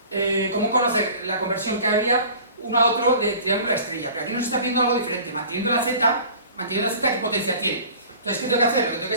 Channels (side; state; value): both; inverted; correlation -0.44